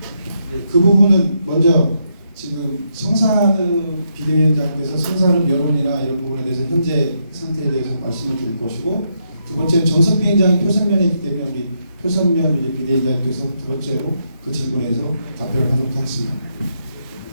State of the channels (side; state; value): both; inverted; correlation -0.79